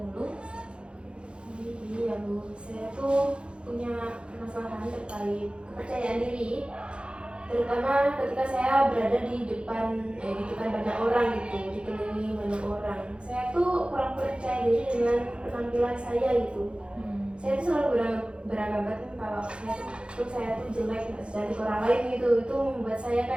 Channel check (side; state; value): left; late; 0.056 ms